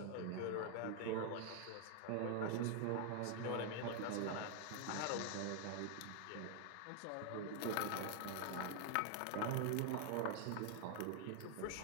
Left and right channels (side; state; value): both; different; correlation 0.00